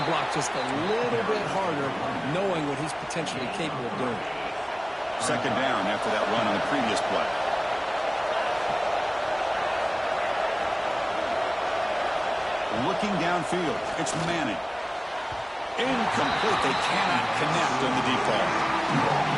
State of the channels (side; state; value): both; identical; correlation 1.00